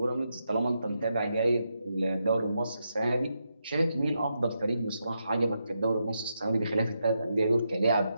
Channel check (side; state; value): both; inverted; correlation -0.84